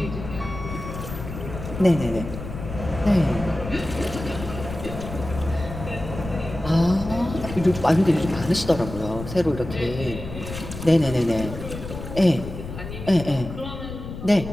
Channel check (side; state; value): left; noise; rumble, 9 dB below the sound